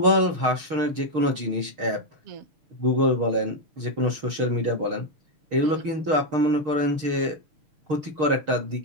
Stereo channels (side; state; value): left; late; 6.5 ms